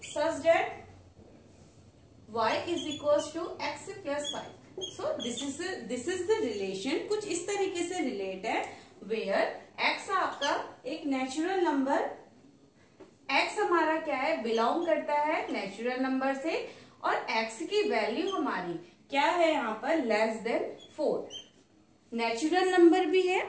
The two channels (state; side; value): identical; both; correlation 1.00